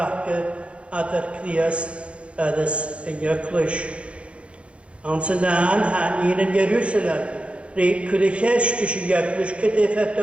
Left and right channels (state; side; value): late; left; 0.060 ms